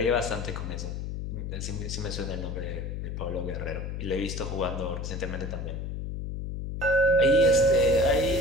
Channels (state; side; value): noise; left; hum, 5 dB below the sound